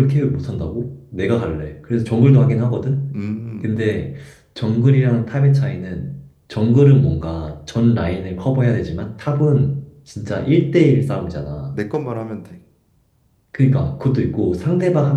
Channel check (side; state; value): both; identical; correlation 1.00